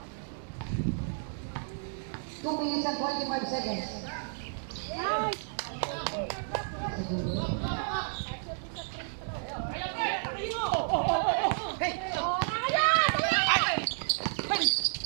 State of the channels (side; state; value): left; silent; digital silence